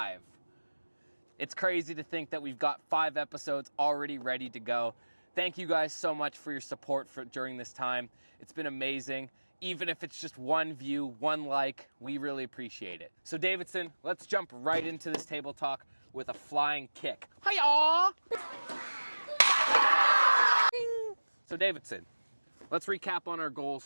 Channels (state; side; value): inverted; both; correlation -1.00